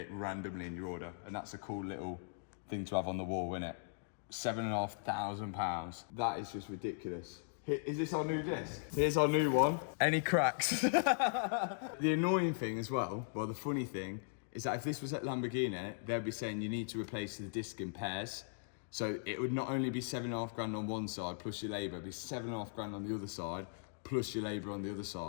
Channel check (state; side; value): silent; right; digital silence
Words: randomly in your order. And that's a cool little thing to have on the wall, isn't it? £7,500. That is just ridiculous. Is this our new disc? Here's our new one. Any cracks? The annoying thing as well, well, the funny thing, is that if this was at Lamborghini, they'd be saying you need to replace the disc in pairs. So it would not only be £7,500 on one side plus your labour, it'd be £7,500 on the other side plus your labour on the other